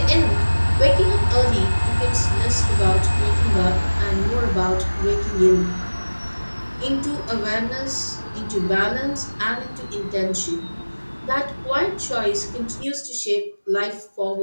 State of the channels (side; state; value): both; inverted; correlation -1.00